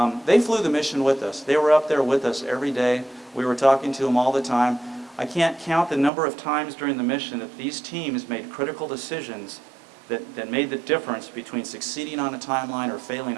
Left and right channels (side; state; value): left; drops out; at 6.1 s